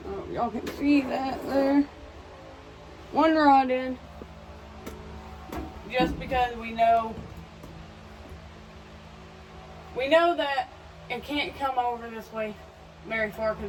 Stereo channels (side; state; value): both; identical; correlation 1.00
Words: y'all can see that there. One rod in. Just because we know that it can't come over this way very far because